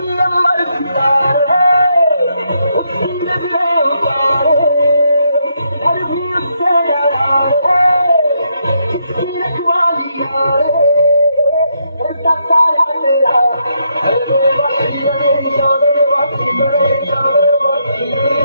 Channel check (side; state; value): both; inverted; correlation -0.77